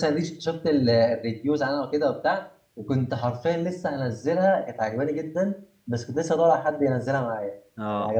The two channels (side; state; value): both; identical; correlation 1.00